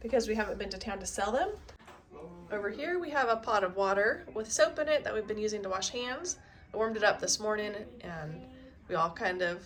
because we haven't been to town to sell them. Over here we have a pot of water with soap in it that we've been using to wash hands. I warmed it up this morning and we all kind of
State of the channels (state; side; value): identical; both; correlation 1.00